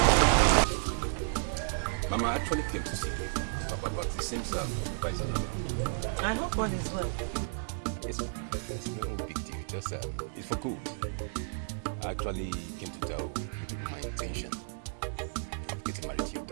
Mama actually came to see you, Papa, but it seems I hope all is well. Yes, Mama. There's no big deal. Just it's for good. I actually came to tell you people my intention of getting married to your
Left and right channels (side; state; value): left; silent; digital silence